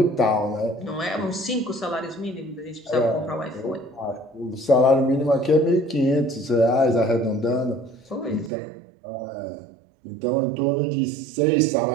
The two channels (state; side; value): drops out; left; at 8.5 s